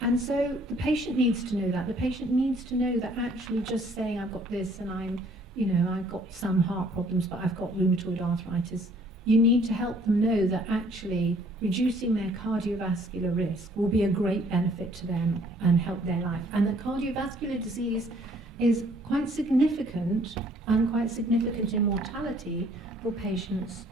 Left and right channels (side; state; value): both; normal; correlation 0.60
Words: And so the patient needs to know that. The patient needs to know that actually just saying I've got this and I've got some heart problems, but I've got rheumatoid arthritis, you need to help them know that actually reducing their cardiovascular risk will be a great benefit to them and help their life. And that cardiovascular disease is quite significant, and quite significant in mortality for patients